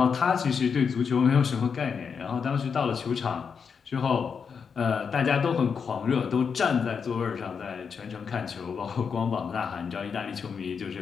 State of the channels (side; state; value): right; quieter; 6.2 dB